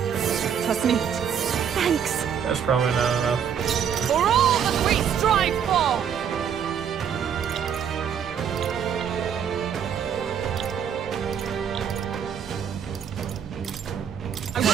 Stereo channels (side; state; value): left; quieter; 8.1 dB